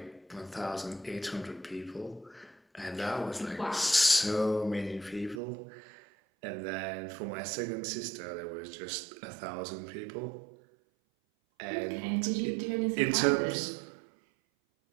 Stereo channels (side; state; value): left; drops out; at 5.4 s